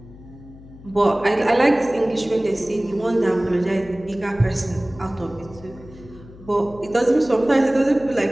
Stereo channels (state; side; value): noise; left; hum, 20 dB below the sound